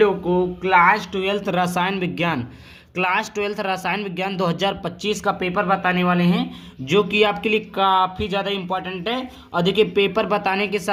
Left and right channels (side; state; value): both; identical; correlation 1.00